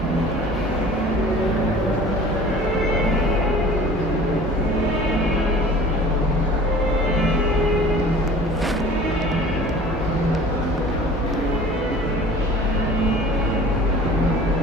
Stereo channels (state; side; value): normal; both; correlation 0.45